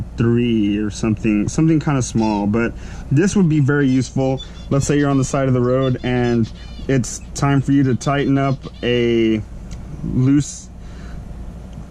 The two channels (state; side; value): identical; both; correlation 1.00